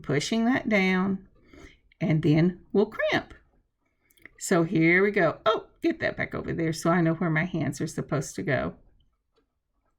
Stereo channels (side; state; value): both; identical; correlation 1.00